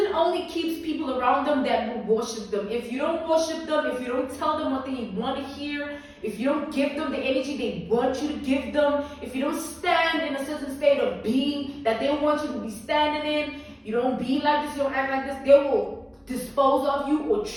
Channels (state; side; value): identical; both; correlation 1.00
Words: only keeps people around them that will worship them. If you don't worship them, if you don't tell them what they want to hear, if you don't give them the energy they want you to give them, if you don't stand in a certain state of being that they want you to be standing in, you don't be like this, you don't act like this, they will dispose of you or